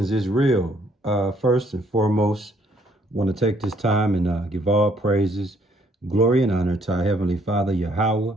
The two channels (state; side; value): normal; both; correlation 0.66